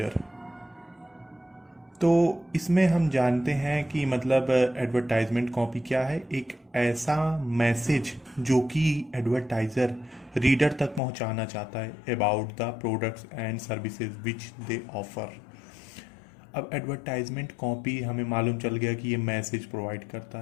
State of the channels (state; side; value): drops out; right; at 11.0 s